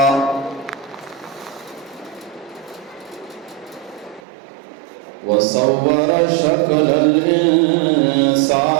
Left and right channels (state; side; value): drops out; left; at 4.2 s